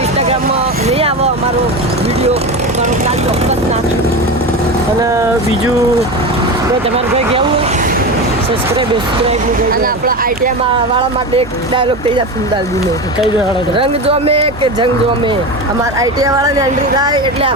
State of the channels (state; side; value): noise; right; hum, 16 dB below the sound